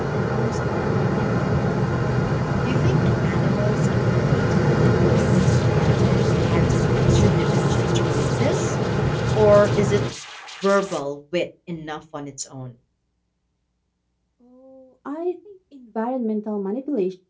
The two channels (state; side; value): identical; both; correlation 1.00